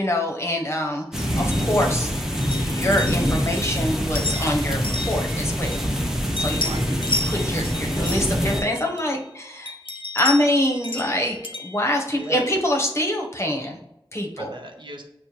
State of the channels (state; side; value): normal; both; correlation 0.63